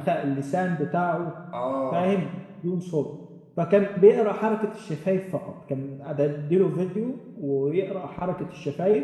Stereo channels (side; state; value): both; identical; correlation 1.00